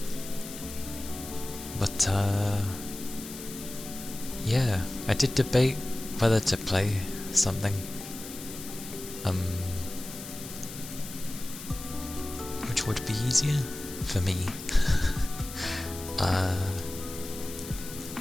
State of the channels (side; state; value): left; noise; hiss, 11 dB below the sound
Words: But yeah, I did debate whether to play something. Which would be easier for me.